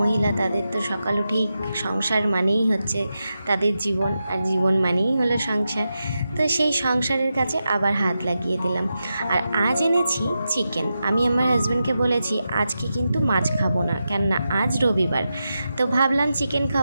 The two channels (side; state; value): both; inverted; correlation -0.89